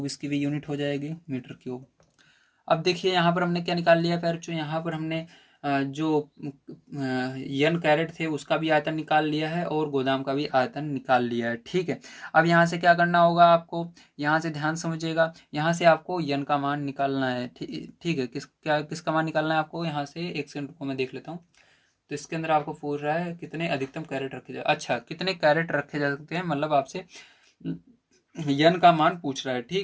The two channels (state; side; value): identical; both; correlation 1.00